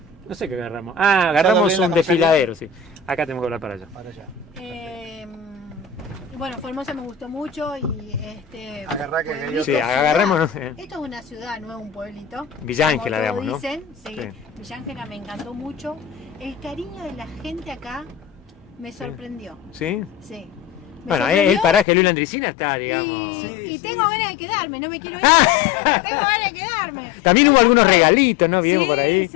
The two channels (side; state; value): right; drops out; at 21.9 s